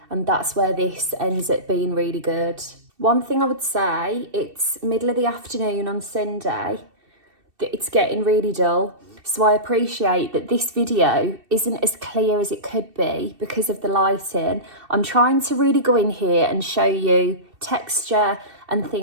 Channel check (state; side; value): late; left; 2.7 ms